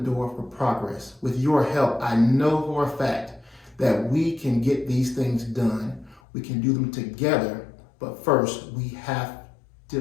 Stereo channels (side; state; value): right; drops out; at 6.2 s